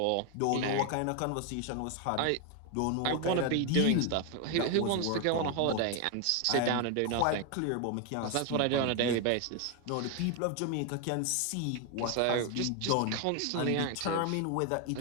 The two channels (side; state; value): both; different; correlation 0.01